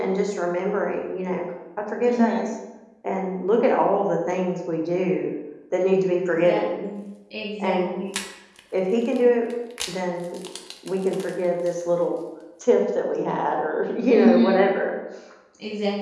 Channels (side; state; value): both; identical; correlation 1.00